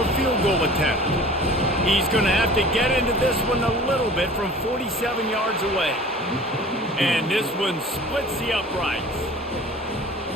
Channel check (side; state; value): both; normal; correlation 0.44